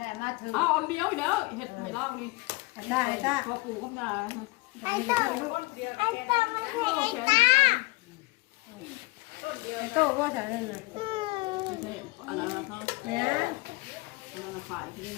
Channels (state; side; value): quieter; right; 23.4 dB